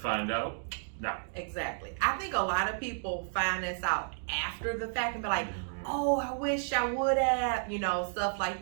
out now. Exactly. I think a lot of people find this out after the fact and be like, oh, I wish I would have, stuff like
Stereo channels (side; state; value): left; silent; digital silence